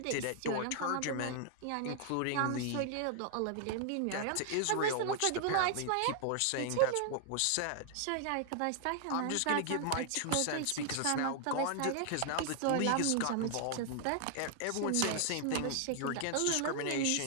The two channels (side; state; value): both; different; correlation 0.00